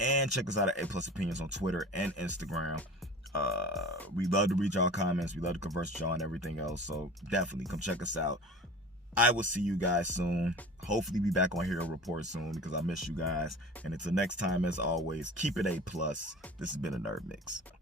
check us out at A+ Opinions on Twitter and Instagram. We love to read y'all comments. We love to converse with y'all and everything else. So definitely come check us out. I will see you guys soon. Hopefully be back on Hero Report soon, because I miss you guys. And until next time, as always, keep it A+. This has been a Nerd Mix.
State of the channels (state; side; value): normal; both; correlation 0.39